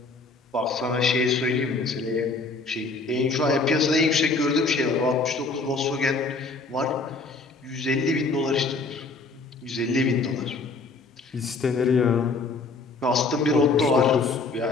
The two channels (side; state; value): right; quieter; 3.8 dB